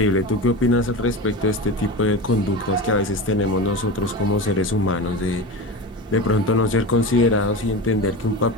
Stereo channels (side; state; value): both; normal; correlation 0.26